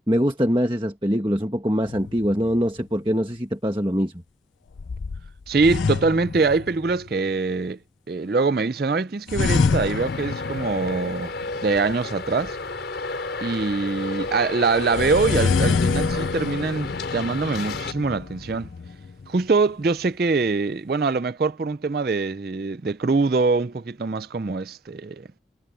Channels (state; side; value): normal; both; correlation 0.47